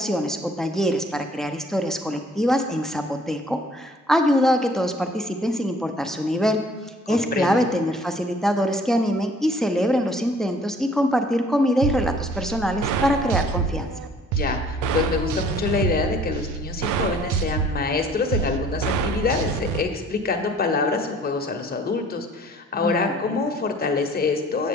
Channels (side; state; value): both; normal; correlation 0.56